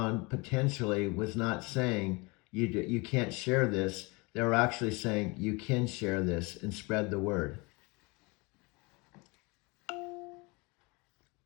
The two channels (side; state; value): right; quieter; 27.1 dB